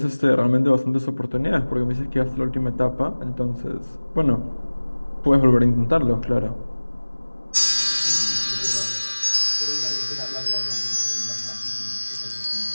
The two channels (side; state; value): both; inverted; correlation -1.00